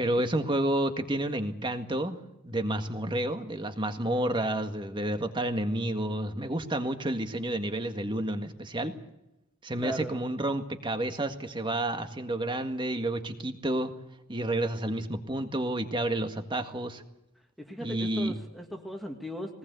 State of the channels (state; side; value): normal; both; correlation 0.65